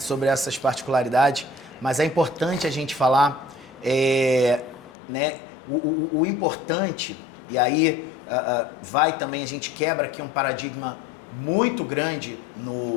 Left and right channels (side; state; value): right; drops out; at 4.9 s